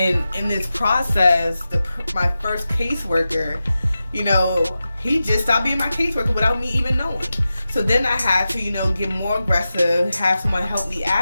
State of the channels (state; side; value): inverted; both; correlation -0.93